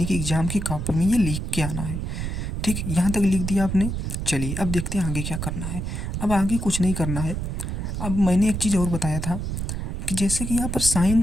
कि एग्ज़ाम की कॉपी में ये लिख के आना है। ठीक, यहाँ तक लिख दिया आपने। चलिए अब देखते हैं आगे क्या करना है। अब आगे कुछ नहीं करना है। अब मैंने एक चीज़ और बताया था कि जैसे कि यहाँ पर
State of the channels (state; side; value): noise; right; rumble, 3 dB below the sound